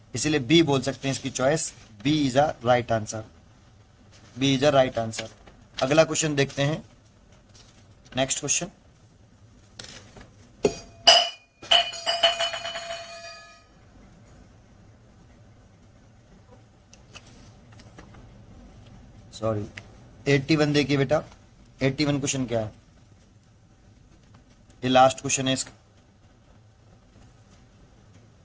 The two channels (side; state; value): both; identical; correlation 1.00